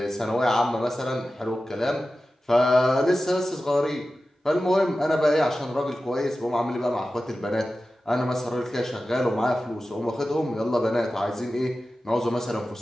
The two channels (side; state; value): both; normal; correlation 0.94